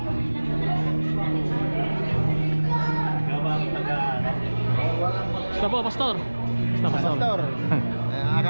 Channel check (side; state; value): both; inverted; correlation -1.00